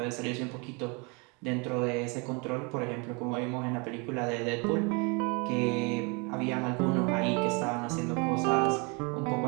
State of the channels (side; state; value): left; quieter; 31.2 dB